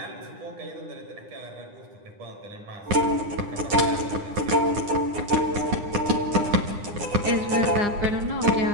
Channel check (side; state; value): left; late; 9.7 ms